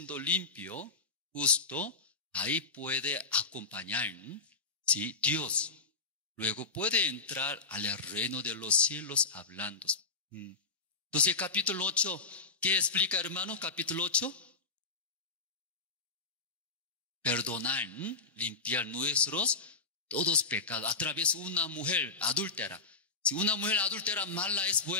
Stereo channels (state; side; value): quieter; right; 4.2 dB